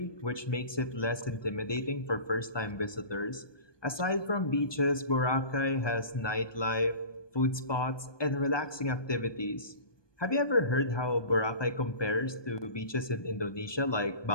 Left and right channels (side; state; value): right; late; 1.2 ms